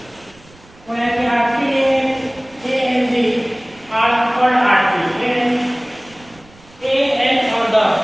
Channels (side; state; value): right; noise; rumble, 26 dB below the sound